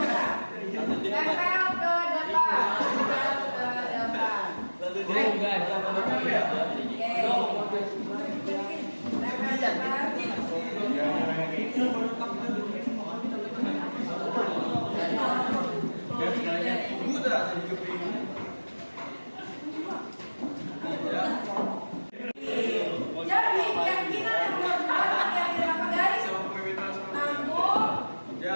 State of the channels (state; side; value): inverted; both; correlation -1.00